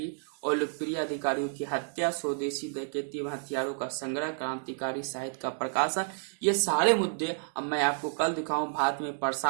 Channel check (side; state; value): left; silent; digital silence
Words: और लोकप्रिय अधिकारियों की हत्या, स्वदेशी डकैती एवं हथियारों का संग्रह, क्रांतिकारी साहित्य का प्रकाशन, ये सारे मुद्दे अब मैं आपको कल दिखाऊं। भारत में